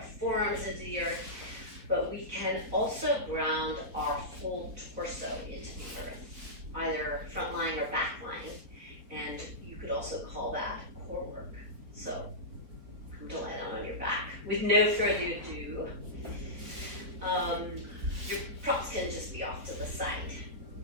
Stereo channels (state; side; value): late; left; 4.3 ms